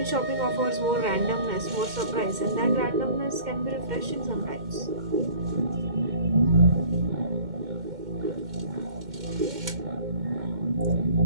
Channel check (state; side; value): late; left; 2.1 ms